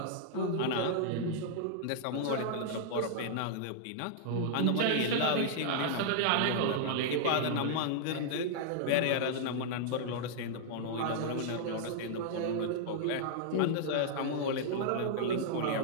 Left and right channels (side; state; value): both; different; correlation -0.01